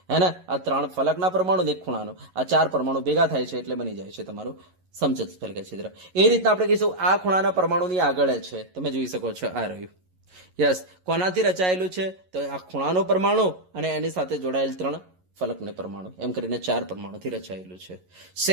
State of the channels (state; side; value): late; left; 11 ms